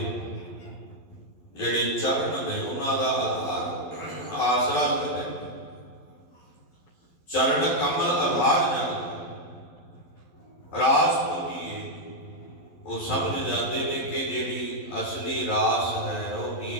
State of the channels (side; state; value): right; late; 11 ms